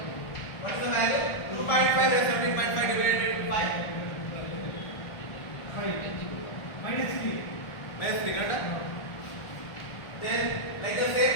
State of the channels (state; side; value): late; right; 1.4 ms